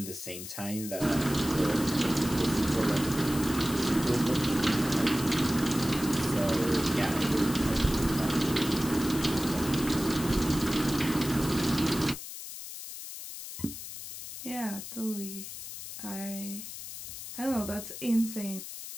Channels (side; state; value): left; noise; hiss, 10 dB below the sound